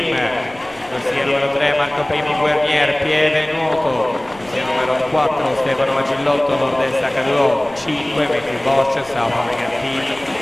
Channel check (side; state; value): left; noise; rumble, 24 dB below the sound